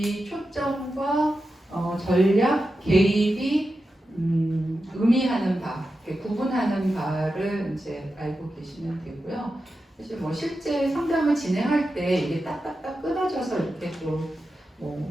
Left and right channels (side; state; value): both; normal; correlation 0.91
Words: 초점과 전략, 개입이 의미하는 바, 구분하는 바를 이제 알고 계시면 되고요. 사실 뭐 실제 상담을 진행할 때 이게 딱딱딱 끊어져서 이렇게 또 뭐